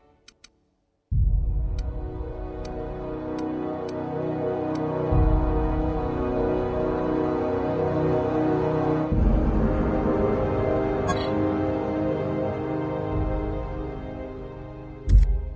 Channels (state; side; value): identical; both; correlation 1.00